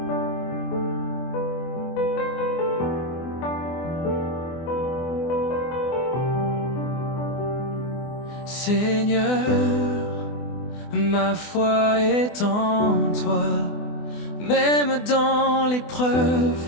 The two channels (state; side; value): late; right; 24 ms